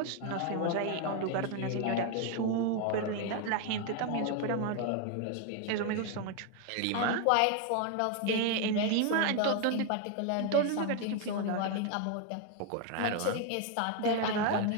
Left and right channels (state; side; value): different; both; correlation 0.01